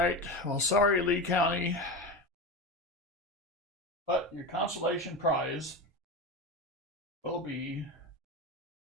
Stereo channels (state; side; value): normal; both; correlation 0.22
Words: Well, sorry, Lee County. But your consolation prize will be